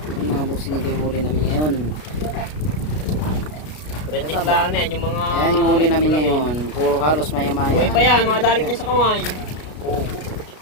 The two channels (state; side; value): late; right; 33 ms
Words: Yung mga busing, ito yung huli namin ngayon. Reject lang na yan, yung mga... Ayan yung huli namin ngayon. Puro halos maya-maya. Buhay pa yan, mga dalik niya sa kamay.